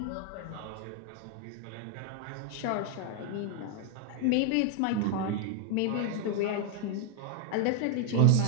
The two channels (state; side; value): different; both; correlation 0.01